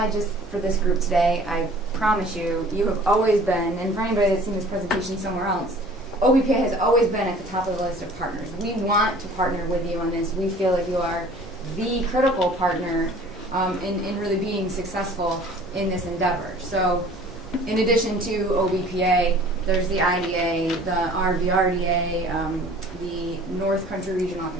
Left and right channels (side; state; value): both; normal; correlation 0.49